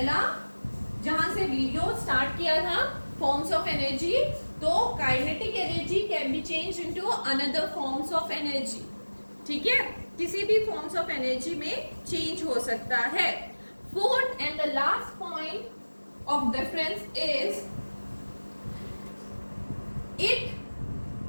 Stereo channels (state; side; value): inverted; both; correlation -1.00